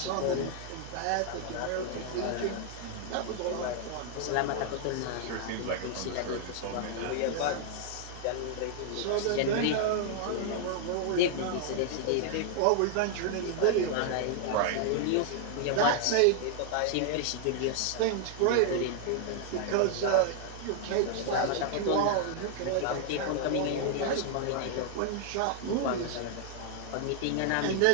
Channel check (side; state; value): both; different; correlation 0.00